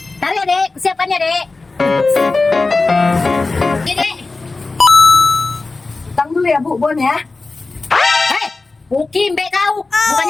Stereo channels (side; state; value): right; quieter; 3.6 dB